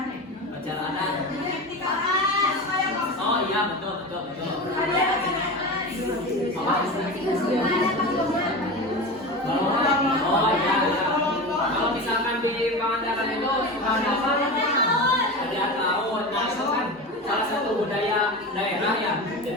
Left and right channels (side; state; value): both; normal; correlation 0.26